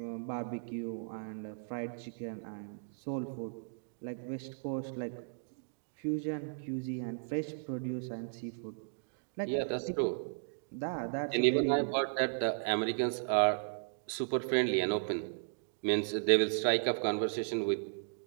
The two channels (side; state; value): left; silent; digital silence